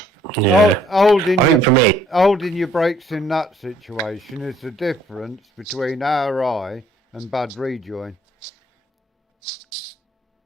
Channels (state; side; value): normal; both; correlation 0.62